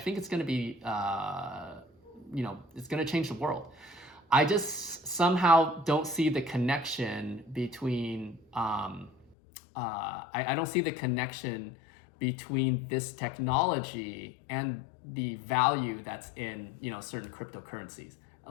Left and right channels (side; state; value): right; drops out; at 9.3 s